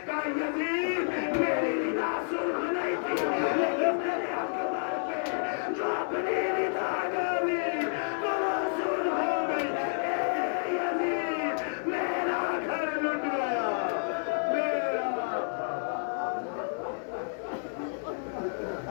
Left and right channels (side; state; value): right; silent; 58 dB below the other